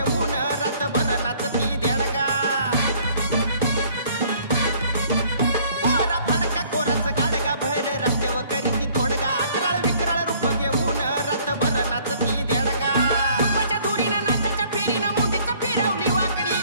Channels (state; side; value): inverted; both; correlation -0.58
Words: रातभर नाचती देडगा भर रस्त्यावर करीती तोडगा अकराळ विकराळ रूप घेऊन रातभर नाचती देडगा तुपाच्या धुरीनं नाचाच्या फेरीनं मुंडीचं फिरवली वाकडी